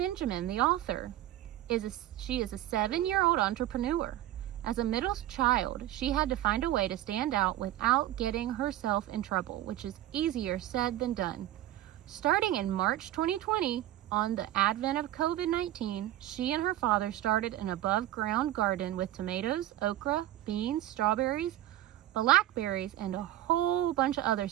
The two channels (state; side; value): quieter; left; 13.9 dB